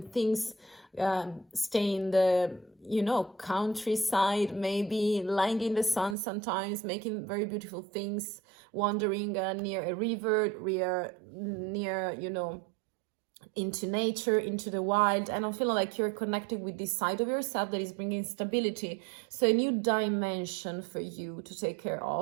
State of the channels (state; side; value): drops out; left; at 6.2 s